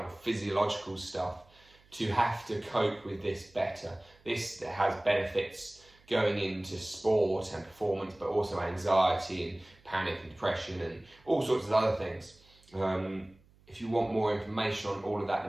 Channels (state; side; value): noise; right; hum, 29 dB below the sound